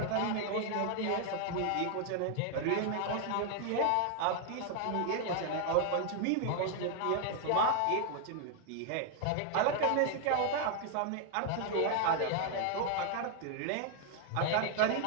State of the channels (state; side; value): different; both; correlation 0.00